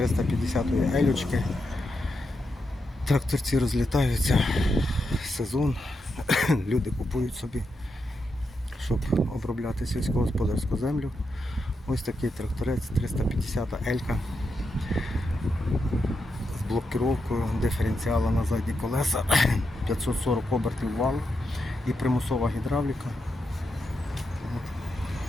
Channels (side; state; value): both; normal; correlation 0.85